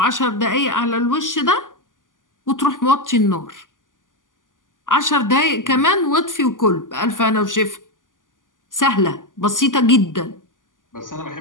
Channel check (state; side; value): late; right; 0.88 ms